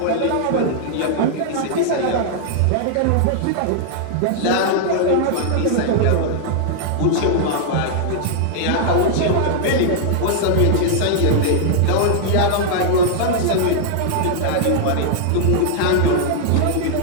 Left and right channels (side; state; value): both; different; correlation -0.01